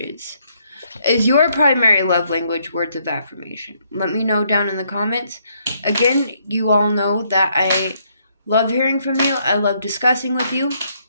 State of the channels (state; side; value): inverted; both; correlation -0.71